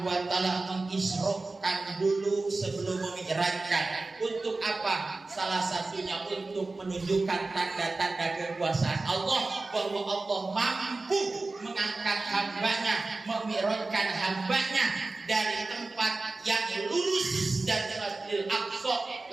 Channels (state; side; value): quieter; left; 3.4 dB